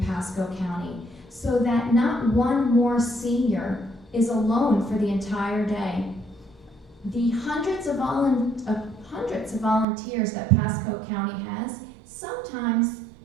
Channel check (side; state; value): left; drops out; at 9.9 s